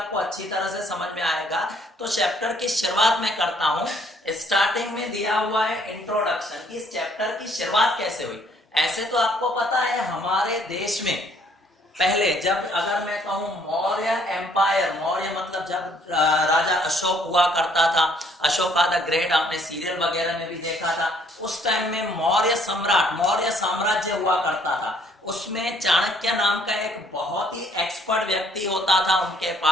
अच्छी तरह से समझ में आएगा। तो चैप्टर की शुरुआत में करता हूं। स्टार्टिंग में दिया हुआ है इंट्रोडक्शन, कि इस चैप्टर की शुरुआत कैसे हुई। ऐसे तो आपको पता है हमारे देश में पहले, जब अगर मैं कहूं मौर्य एम्पायर, मौर्य मतलब जब राजा अशोक हुआ करता था, अशोका द ग्रेट, आपने सीरियल वगैरह में भी देखा था, उस टाइम में मौर्य सम्राट, मौर्य साम्राज्य हुआ करता था। उसमें चाणक्य नाम का एक बहुत ही एक्सपर्ट व्यक्ति होता था उनके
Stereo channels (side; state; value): both; normal; correlation 0.63